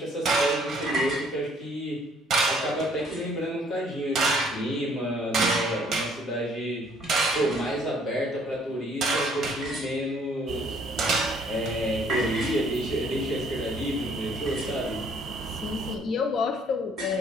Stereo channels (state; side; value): normal; both; correlation 0.62